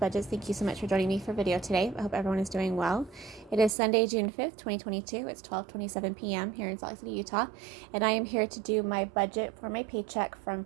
Thank you so much for joining me for video today. I hope everyone is doing well. It is Sunday, June 5th, 2022. It's 12:27 p.m. here in Salt Lake City, Utah. And I am here to do my budget for my paycheck from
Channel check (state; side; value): drops out; left; at 3.8 s